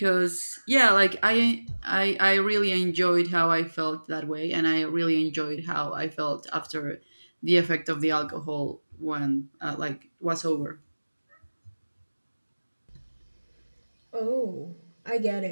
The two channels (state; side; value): inverted; both; correlation -1.00